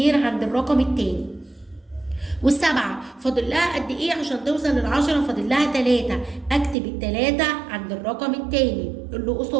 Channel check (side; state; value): left; drops out; at 6.8 s